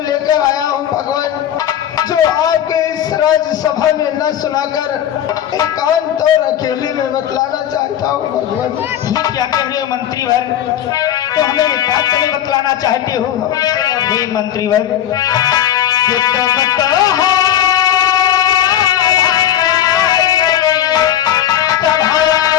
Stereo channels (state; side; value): quieter; right; 10.7 dB